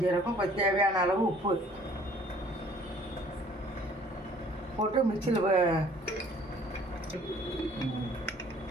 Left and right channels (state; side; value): normal; both; correlation 0.55